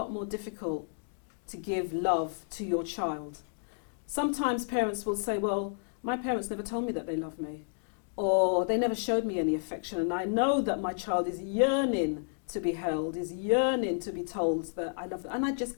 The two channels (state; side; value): silent; right; digital silence